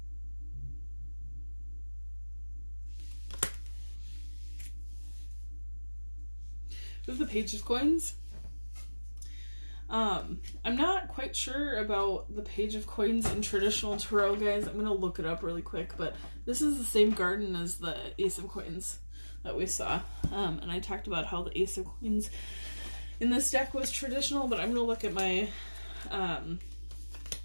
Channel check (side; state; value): both; inverted; correlation -1.00